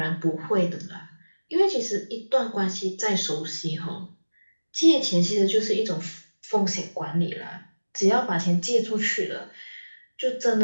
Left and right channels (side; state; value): both; inverted; correlation -1.00